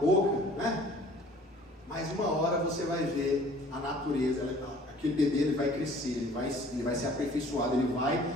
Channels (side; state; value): both; normal; correlation 0.51